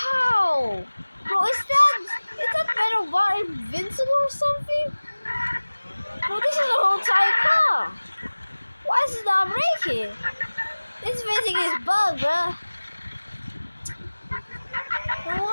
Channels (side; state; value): both; inverted; correlation -1.00